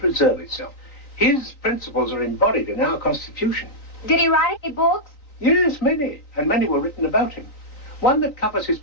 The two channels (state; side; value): late; right; 3.9 ms